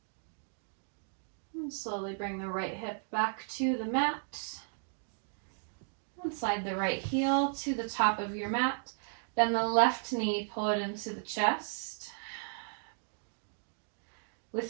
And slowly bring the right hip back to the mat. And slide the right heel to the top of your mat. Bend the left knee, pull it into the chest.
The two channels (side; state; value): left; silent; digital silence